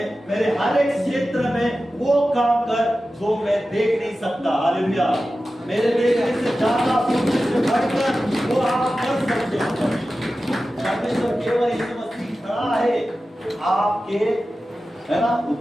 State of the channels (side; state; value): both; normal; correlation 0.94